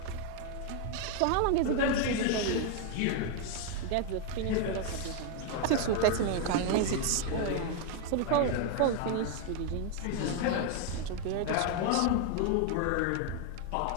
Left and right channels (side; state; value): both; different; correlation 0.00